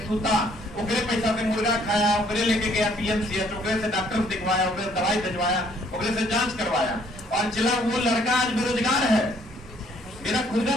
सूता, ओकरे पैसा से मुर्गा खाया, ओकरे लेके गया PMCH, ओकरे से डॉक्टर दिखवाया, ओकरे दवाई भिजवाया, ओकरे से जांच करवाया। और चला वो लड़का आज बेरोजगार है। मेरा खुद का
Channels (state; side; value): normal; both; correlation 0.63